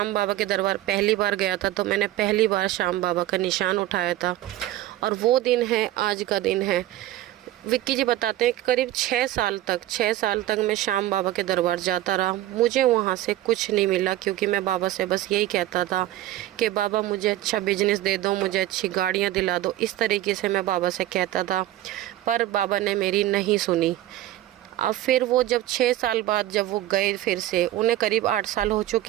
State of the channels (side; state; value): left; quieter; 14.6 dB